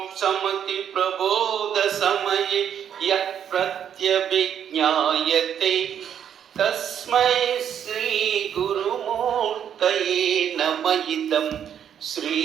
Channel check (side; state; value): left; quieter; 8.9 dB